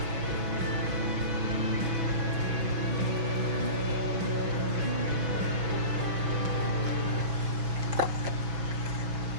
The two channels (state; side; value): late; left; 6.1 ms